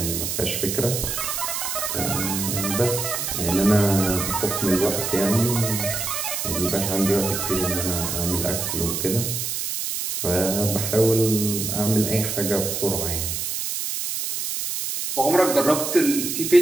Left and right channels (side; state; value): right; noise; hiss, 3 dB below the sound